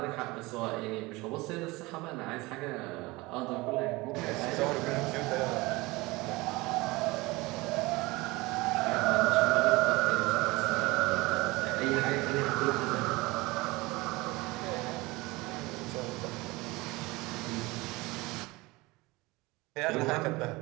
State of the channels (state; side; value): quieter; left; 22.4 dB